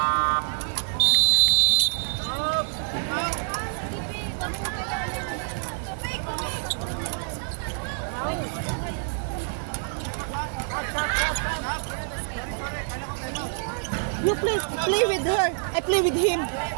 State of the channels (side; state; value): left; silent; digital silence